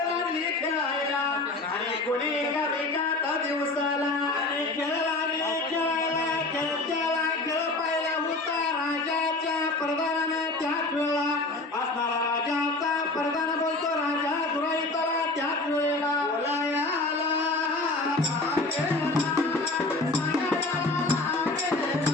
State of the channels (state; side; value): quieter; right; 3.1 dB